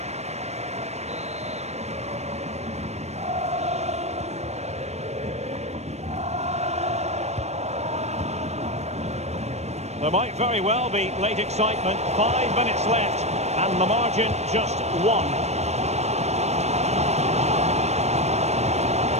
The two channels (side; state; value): left; late; 0.32 ms